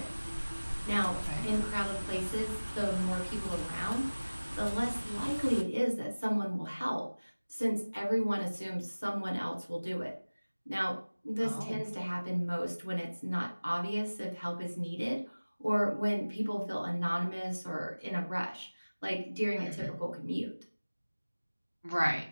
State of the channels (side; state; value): both; inverted; correlation -1.00